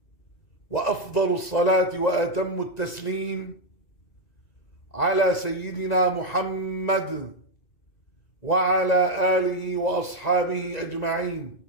وأفضل الصلاة وأتم التسليم على سيدنا محمد وعلى آله وأصحابه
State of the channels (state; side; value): late; right; 2.0 ms